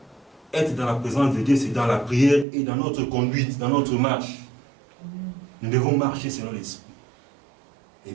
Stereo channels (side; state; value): left; drops out; at 2.5 s